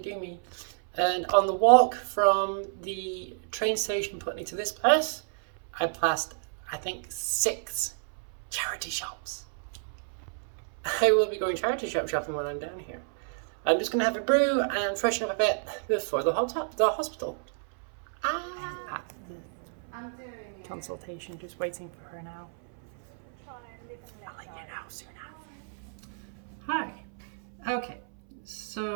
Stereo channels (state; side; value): silent; left; 58 dB below the other